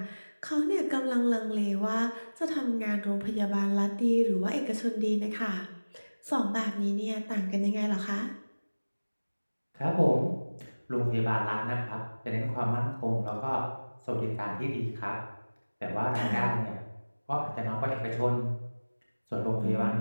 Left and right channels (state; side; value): inverted; both; correlation -1.00